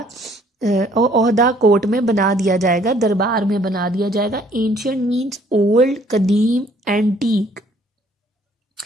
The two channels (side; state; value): both; normal; correlation 0.61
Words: ओहदा कोर्ट में बना दिया जाएगा, दरबार में बना दिया जाएगा. एंशिएंट मीन्स ओल्ड, कदीम, antique.